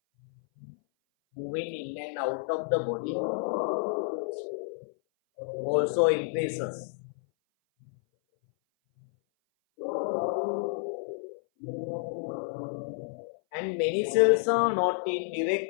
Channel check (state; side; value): silent; right; 57 dB below the other